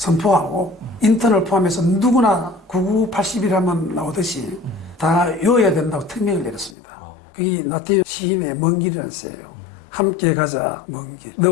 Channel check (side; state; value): right; drops out; at 6.8 s